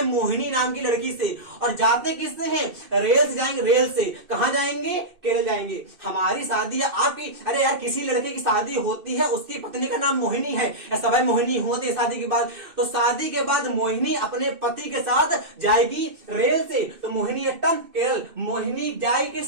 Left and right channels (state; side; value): late; left; 2.6 ms